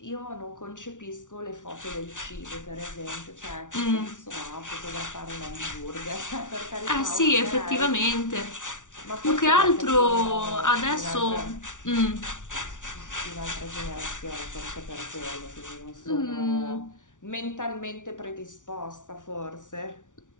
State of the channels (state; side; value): late; right; 0.87 ms